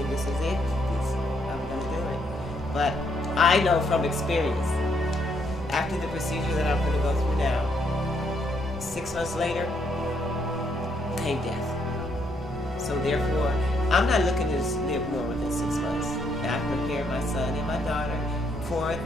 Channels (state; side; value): normal; both; correlation 0.73